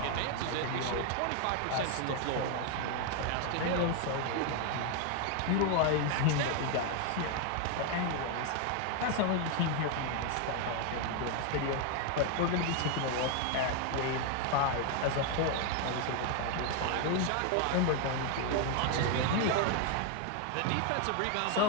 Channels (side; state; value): both; different; correlation 0.01